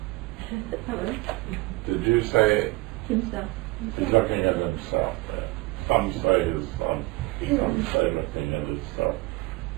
Hello. Did you say Himself. he's looking at himself there? Some say his son, some say looking at himself.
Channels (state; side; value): quieter; left; 22.3 dB